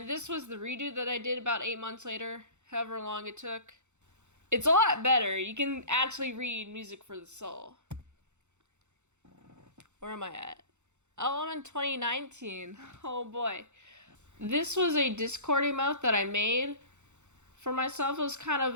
this was the redo that I did about 8 months later, however long it took. It's a lot better. You can actually read Music for the Soul. Where am I at? Oh, I'm in 2019. Oh boy. This was a Discord emote that I made for myself. It was kind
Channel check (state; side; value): late; left; 0.83 ms